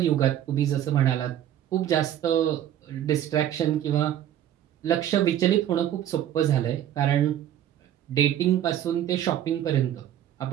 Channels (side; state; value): left; quieter; 11.3 dB